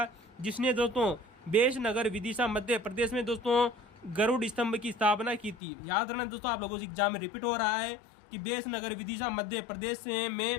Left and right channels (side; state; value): right; drops out; at 5.6 s